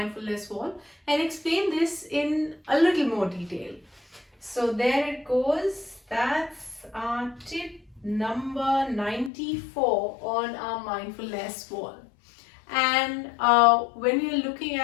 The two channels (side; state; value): right; drops out; at 9.3 s